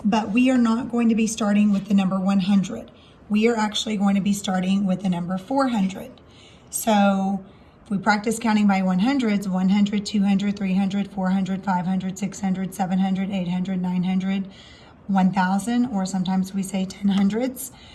but we are not going to be starting with the number 100. We are actually going to be starting with the number 400. So if we practice counting by 100s, 100, 200, 300, 400, 500, 600, 700, 800, 900, 1000, or sometimes we say 10 hundreds.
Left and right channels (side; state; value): both; identical; correlation 1.00